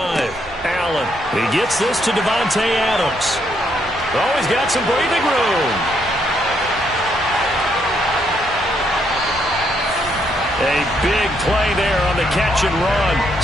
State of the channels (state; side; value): normal; both; correlation 0.74